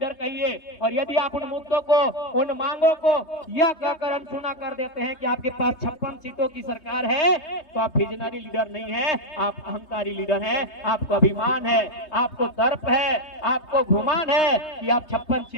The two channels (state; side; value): late; right; 3.2 ms